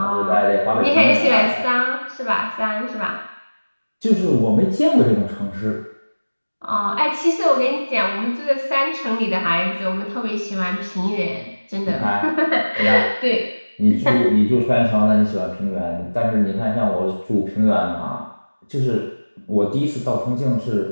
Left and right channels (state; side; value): inverted; both; correlation -1.00